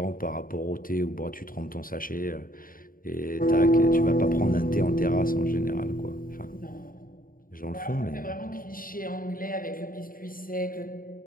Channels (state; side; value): late; right; 0.41 ms